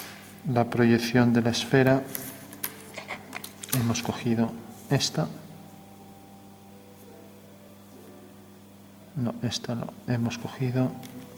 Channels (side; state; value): both; identical; correlation 1.00